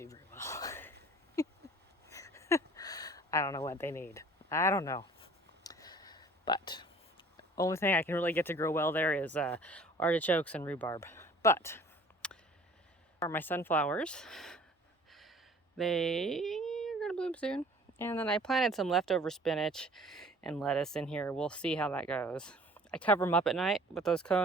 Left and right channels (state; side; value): normal; both; correlation 0.50